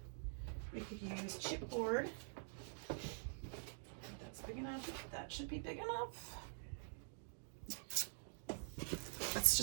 We could use chipboard. That's big enough. That should be big enough. Let's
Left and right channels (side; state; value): left; silent; digital silence